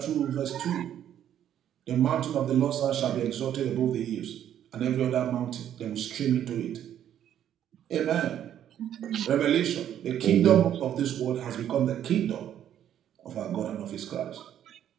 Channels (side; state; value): left; quieter; 10.4 dB